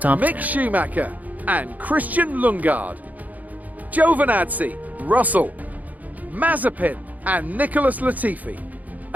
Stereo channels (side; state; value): left; late; 0.078 ms